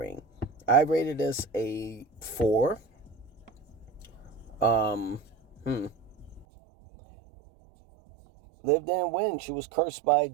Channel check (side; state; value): left; drops out; at 6.5 s